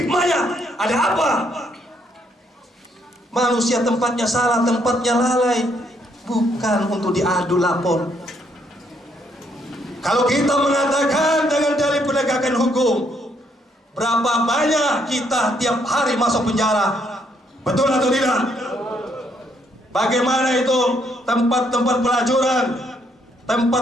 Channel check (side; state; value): both; normal; correlation 0.72